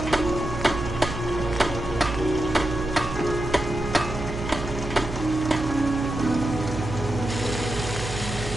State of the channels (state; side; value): noise; right; hum, 8 dB below the sound